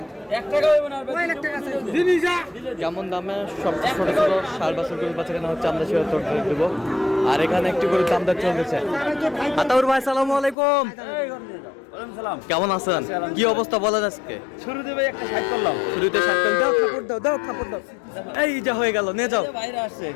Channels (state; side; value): drops out; right; at 10.6 s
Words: কেমন দামে সব ছোট ছোট 4 বছর গরু বাচ্চা কেনা হচ্ছে, আমরা সেটা তোর দেবো। আর এখানে একটি গরুর দাম দর চলতেছে। আতাউর ভাই সালামু আলাইকুম, কেমন আছেন? কি অবস্থা বলেন আজকে? শুরুতে ভাই একটা 60 করলাম। শুরুতে 60 দাও, খাপড় দাও। এই যা হয়ে গেল, নিয়ে যাও। বাইরে আসছে